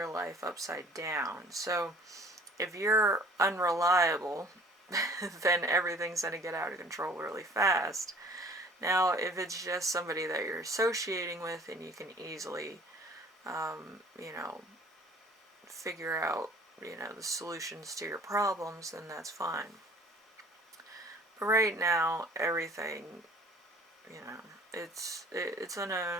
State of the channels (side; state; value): both; normal; correlation 0.51